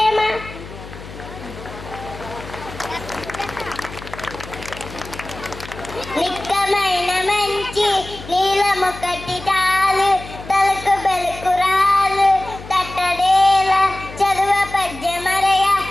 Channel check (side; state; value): left; noise; hum, 14 dB below the sound